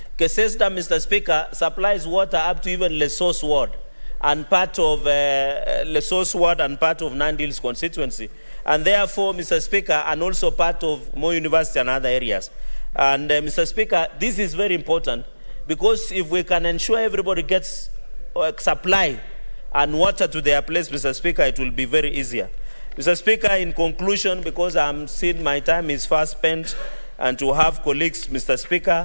Keses Dam, Mr. Speaker, supplies water up to even Lesotho Ward and part of Lesotho Ward and part of Nandi Hills constituency. And therefore, Mr. Speaker, and also part of Moi University and other areas. And Mr. Speaker, this is very important because if we can ensure everybody gets supply and water to their place, Mr. Speaker, it will be very easier. Mr. Speaker, in conclusion, because I'm seeing my time is fast spent, and to have colleagues, Mr.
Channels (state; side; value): inverted; both; correlation -1.00